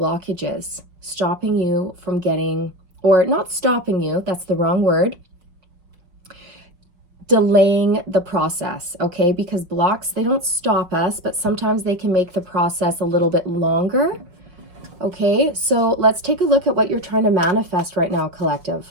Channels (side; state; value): left; late; 5.5 ms